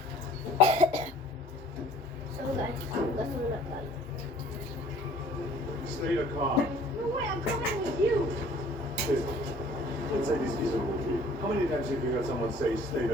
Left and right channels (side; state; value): both; normal; correlation 0.52